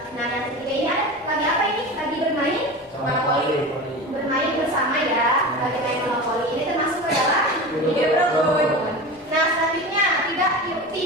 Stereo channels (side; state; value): both; normal; correlation 0.29